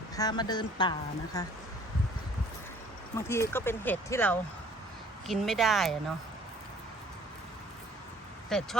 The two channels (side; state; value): both; normal; correlation 0.56